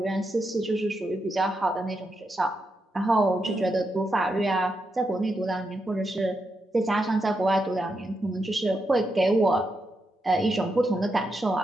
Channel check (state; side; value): normal; both; correlation 0.84